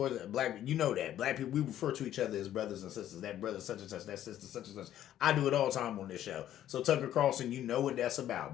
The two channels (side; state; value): right; quieter; 11.8 dB